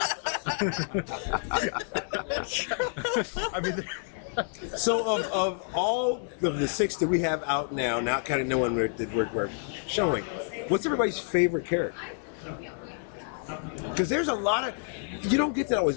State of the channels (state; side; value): silent; right; digital silence